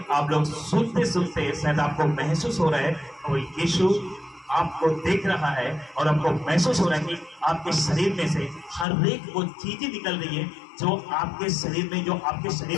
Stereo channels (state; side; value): drops out; right; at 8.8 s